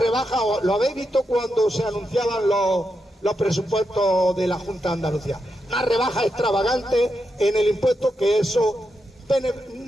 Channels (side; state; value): both; normal; correlation 0.85